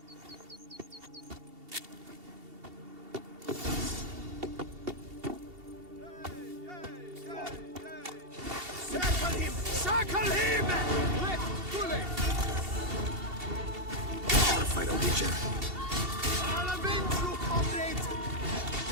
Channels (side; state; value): left; late; 2.7 ms